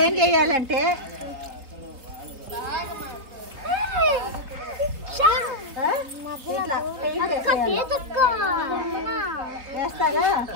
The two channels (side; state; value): left; late; 3.6 ms